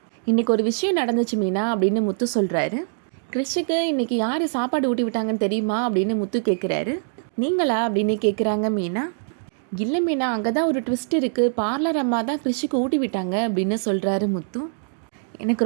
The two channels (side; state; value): left; silent; digital silence